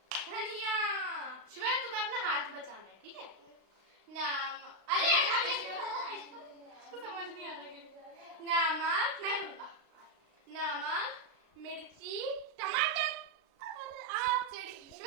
धनिया। शिवाय तुम्हें अपना हाथ बचाना है, ठीक है? अरे इसको समझ नहीं आ रहा है। नमक, मैं दूंगा। नमक, मिर्ची, टमाटर। आप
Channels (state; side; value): late; left; 36 ms